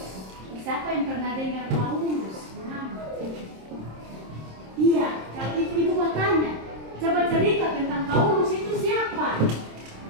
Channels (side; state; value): left; late; 26 ms